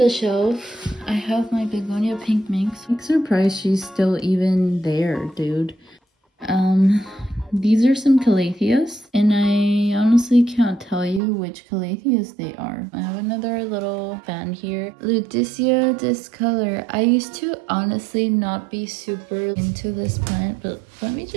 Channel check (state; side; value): drops out; left; at 11.2 s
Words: shelf, I have my Begonia pink minx. I'm surprised she's still even there, dude. These are some calatheas, and I honestly can't tell you which calatheas they are. I have another little fan here. Ludisia discolor. I used to honestly not be super into this plant, but let me